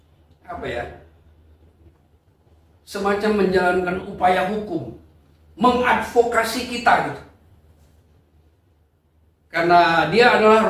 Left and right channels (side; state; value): both; identical; correlation 1.00